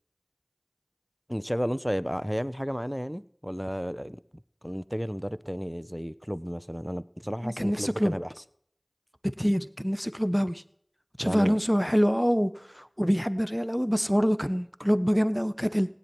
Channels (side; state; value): both; identical; correlation 1.00